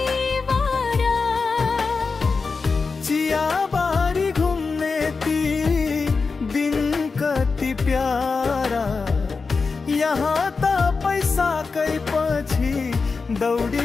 चियाबारी घुम्ने ती दिन कति प्यारा यहाँ त पैसाकै पछि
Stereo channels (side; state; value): right; quieter; 4.5 dB